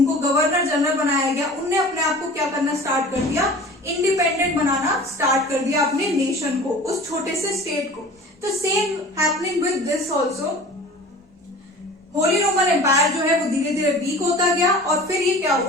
गवर्नर जनरल बनाया गया, उनने अपने आप को क्या करना स्टार्ट कर दिया, इंडिपेंडेंट बनाना स्टार्ट कर दिया अपने नेशन को, उस छोटे से स्टेट को। तो same happening with this also, Holy Roman Empire जो है वो धीरे धीरे वीक होता गया, और फिर ये क्या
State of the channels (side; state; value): both; normal; correlation 0.42